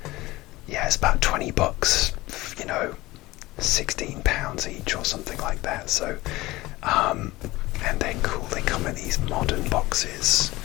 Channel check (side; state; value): right; quieter; 19.3 dB